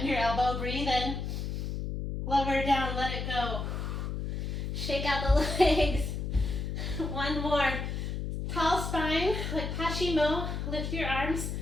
your elbow. Breathe in. Lower down. Let it go. Shake out the legs. One more. Tall spine, like Pashimo. Lift your arms.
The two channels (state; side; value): noise; left; hum, 3 dB below the sound